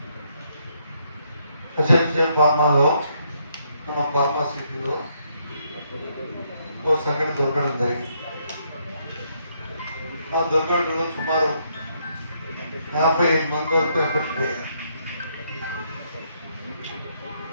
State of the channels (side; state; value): both; inverted; correlation -0.74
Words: ఎస్ఎన్సీ ఫార్మాలో మన ఫార్మాసిటీలో ఓ సంఘటన దొరకడం జరిగింది. ఆ దొరకడంలో సుమారు 55 మంది వరకు ఎఫెక్ట్ అయ్యారు.